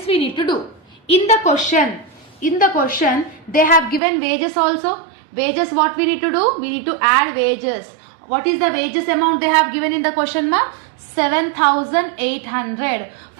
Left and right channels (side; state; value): left; drops out; at 4.0 s